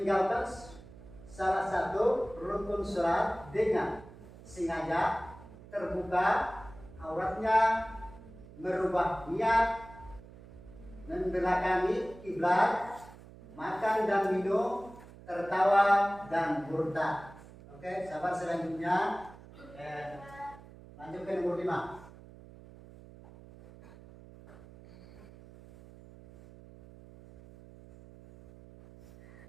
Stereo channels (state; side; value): noise; right; hum, 19 dB below the sound